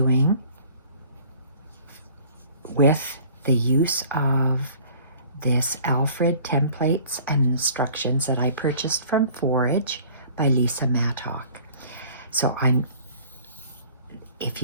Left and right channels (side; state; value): both; inverted; correlation -0.51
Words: with the use of this Alfred templates and instructions that I purchased from Forage by Lisa Mattock. So if